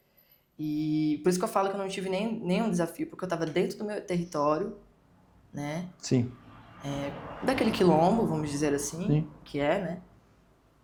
E por isso que eu falo que eu não tive nenhum desafio, porque eu estava dentro do meu território, né? Sim. Daquele quilombo, vamos dizer assim, Sim. que né?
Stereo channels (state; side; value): identical; both; correlation 1.00